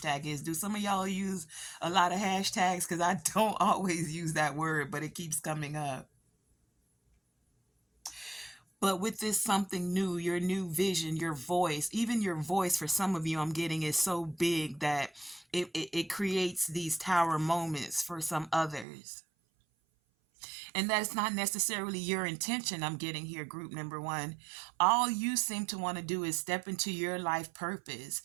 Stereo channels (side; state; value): left; drops out; at 18.9 s